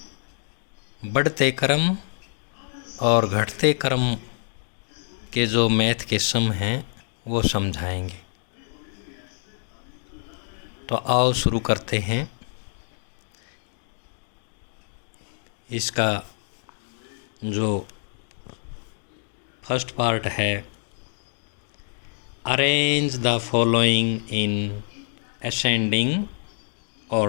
बढ़ते क्रम और घटते क्रम के जो मैथ के सम हैं वो समझाएंगे। तो आओ शुरू करते हैं। इसका जो फर्स्ट पार्ट है, arrange the following in ascending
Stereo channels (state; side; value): silent; right; digital silence